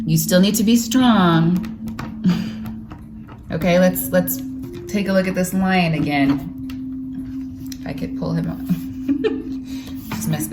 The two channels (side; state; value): both; identical; correlation 1.00